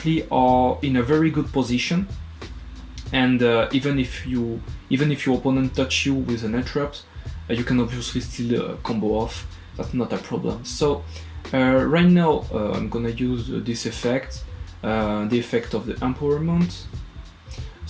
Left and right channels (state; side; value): identical; both; correlation 1.00